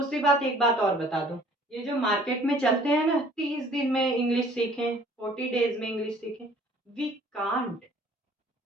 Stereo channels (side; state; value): both; normal; correlation 0.55